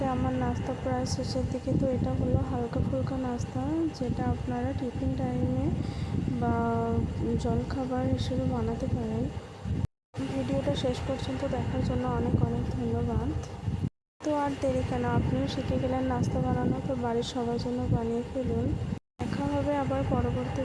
আমার নাস্তা প্রায় শেষের দিকে। তো এটা হলো হালকা ফুলকা নাস্তা, যেটা আপনারা টিফিন টাইমে বা জলখাবার হিসেবে বানাতে পারেন। ভিডিওটা শেষ পর্যন্ত দেখার জন্য অনেক অনেক ধন্যবাদ। তো আর দেরি কেন, আপনিও শিখে গেলেন নাস্তা বানানো। তো বাড়ির সবার জন্য বানিয়ে ফেলুন। দেখা হবে আবার পরবর্তী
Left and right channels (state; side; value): identical; both; correlation 1.00